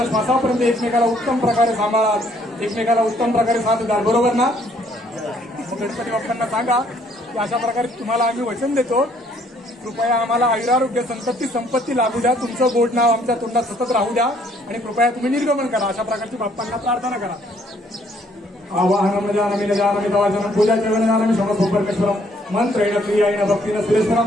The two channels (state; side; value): normal; both; correlation 0.65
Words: श्वासापर्यंत एकमेकाला उत्तम प्रकारे सांभाळाल एकमेकाला उत्तम प्रकारे साथ द्याल बरोबर ना. गणपती बाप्पांना सांगा की अशा प्रकारे तुम्हाला आम्ही वचन देतो कृपया आम्हाला आयुरारोग्य संपत्ती लाभू द्या तुमचं गोड नाव आमच्या तोंडात सतत राहू द्या आणि कृपया तुम्ही निर्गमन करा अशा प्रकारची बाप्पांना प्रार्थना करा. आवाहनम जानमी न जानमी तवाचनं पूजा चरण जानमी समसोपरकेश्वरम मंत्रेण क्रियायेन भक्तिन